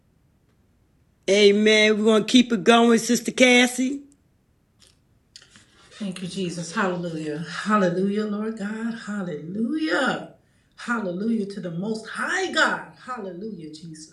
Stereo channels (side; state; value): both; identical; correlation 1.00